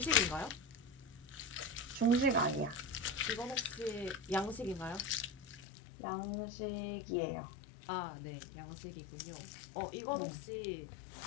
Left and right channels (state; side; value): drops out; right; at 5.6 s